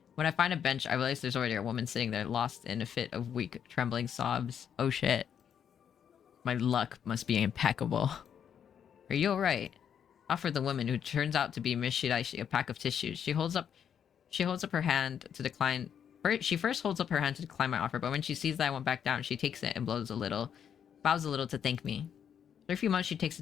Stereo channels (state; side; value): quieter; right; 8.4 dB